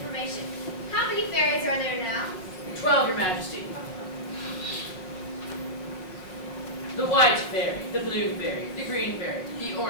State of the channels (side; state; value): right; late; 6.1 ms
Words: How many fairies are there now? 12, Your Majesty. The white fairy, the blue fairy, the green fairy, the